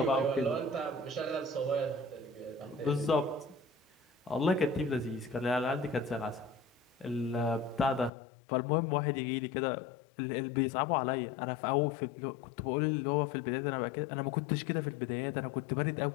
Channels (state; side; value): drops out; right; at 8.1 s